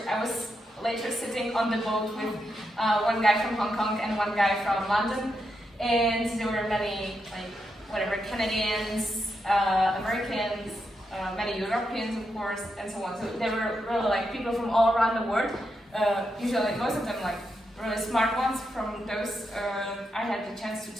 I was later sitting on the boat with one guy from Hong Kong and one guy from London, and there were many Canadians, Americans, many Europeans of course, and so on. So there were really like people from all around the world. Usually most of them like really smart ones. From those I had the chance to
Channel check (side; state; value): both; normal; correlation 0.84